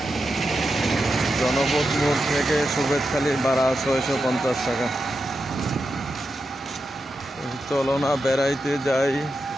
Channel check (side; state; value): both; normal; correlation 0.88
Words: জনপথ মোড় থেকে সুবেদখালি ভাড়া 650 টাকা। চলো না বেড়াইতে যাই,